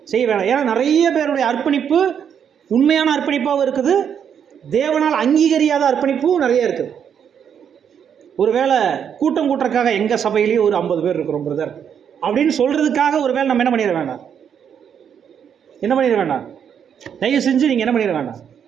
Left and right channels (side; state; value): left; quieter; 8.1 dB